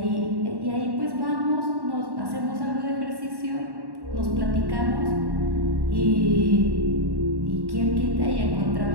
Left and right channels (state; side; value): late; left; 1.1 ms